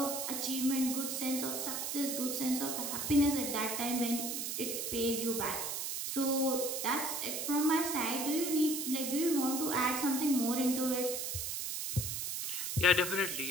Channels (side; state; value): right; noise; hiss, 3 dB below the sound